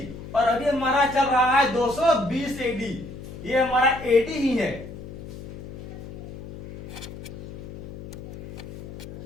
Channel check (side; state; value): left; noise; hum, 12 dB below the sound